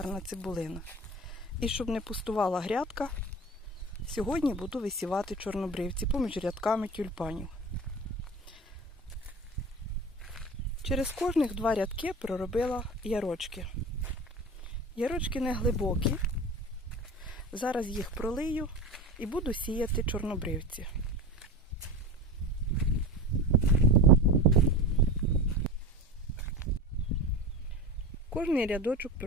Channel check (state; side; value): normal; both; correlation 0.32